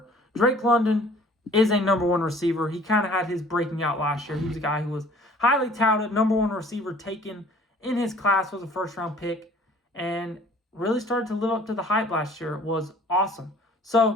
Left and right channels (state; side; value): normal; both; correlation 0.53